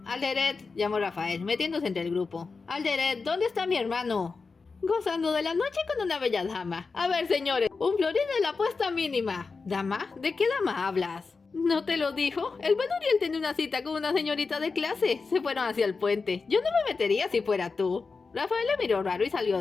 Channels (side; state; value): right; quieter; 4.5 dB